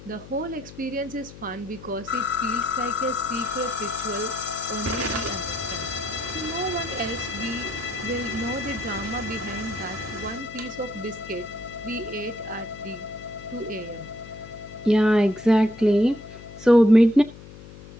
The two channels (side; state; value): left; noise; hum, 17 dB below the sound